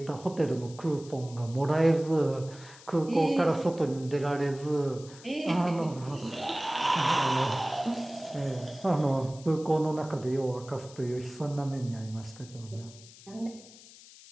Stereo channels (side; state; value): left; noise; hiss, 20 dB below the sound